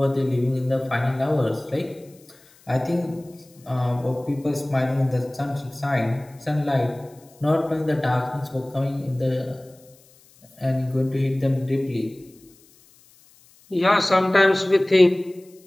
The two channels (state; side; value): noise; left; hiss, 28 dB below the sound